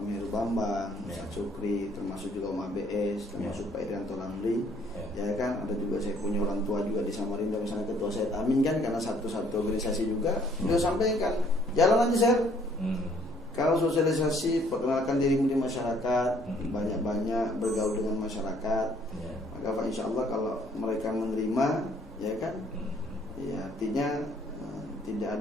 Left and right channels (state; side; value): normal; both; correlation 0.62